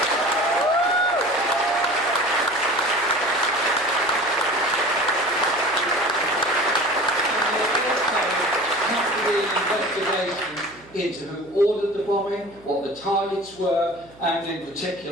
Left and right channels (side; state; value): right; noise; hum, 25 dB below the sound